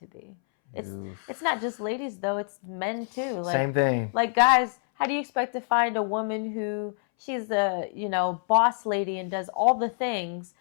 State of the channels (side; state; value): right; silent; 60 dB below the other